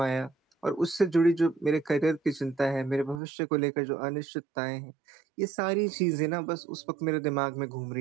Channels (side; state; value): left; drops out; at 3.2 s